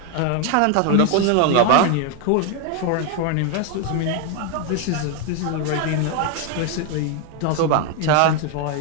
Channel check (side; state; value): both; different; correlation 0.01